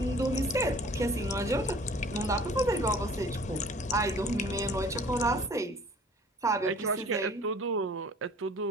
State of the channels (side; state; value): both; normal; correlation 0.50